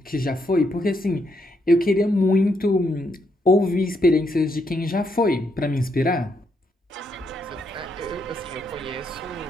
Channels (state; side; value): normal; both; correlation 0.77